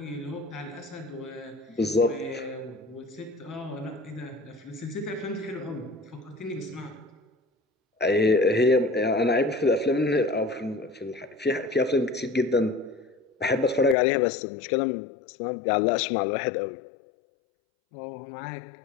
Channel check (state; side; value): drops out; right; at 14.0 s